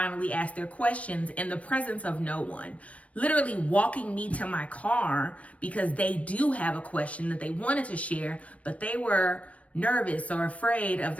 ask their questions in the presence of no one, literally walking me to my car because they do have a question that they wanted to share, but they were nervous or afraid of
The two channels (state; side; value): late; right; 0.065 ms